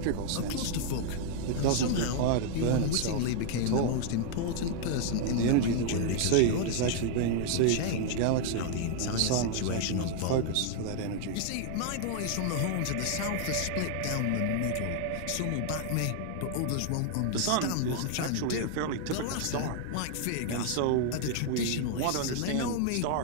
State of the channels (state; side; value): different; both; correlation 0.00